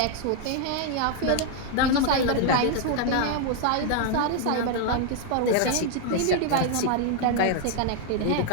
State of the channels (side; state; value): both; different; correlation 0.00